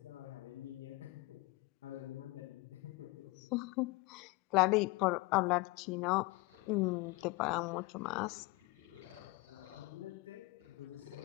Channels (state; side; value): quieter; right; 23.1 dB